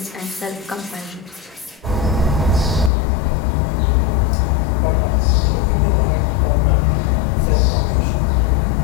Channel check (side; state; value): right; drops out; at 2.9 s